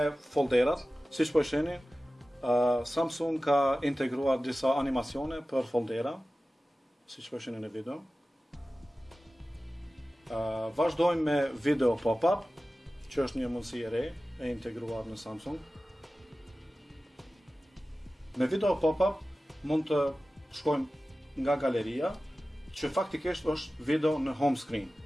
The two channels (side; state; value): both; normal; correlation 0.96